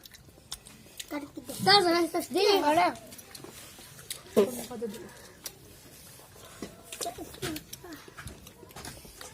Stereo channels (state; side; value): identical; both; correlation 1.00